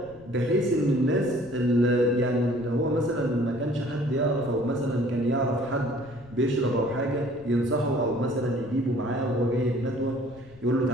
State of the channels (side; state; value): left; noise; rumble, 22 dB below the sound